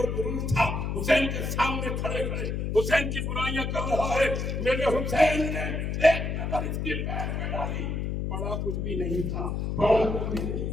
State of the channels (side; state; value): left; noise; hum, 2 dB below the sound